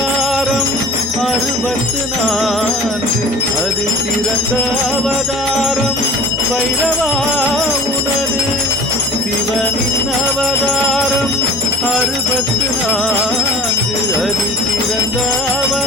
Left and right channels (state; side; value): normal; both; correlation 0.43